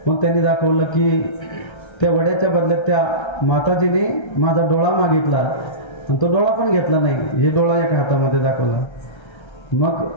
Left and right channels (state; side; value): late; right; 1.3 ms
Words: मग त्यांनी दाखवलं की त्या वड्याच्या बदल्यात त्या माताजीने माझा डोळा मागितला आणि तो डोळा पण घेतला नाही. हे डोळा एका हातामध्ये दाखवला. मग